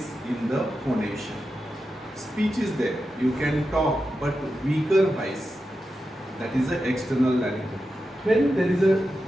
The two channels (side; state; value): both; normal; correlation 0.90